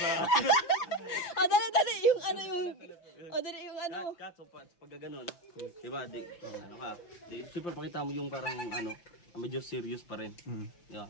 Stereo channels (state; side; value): late; right; 5.8 ms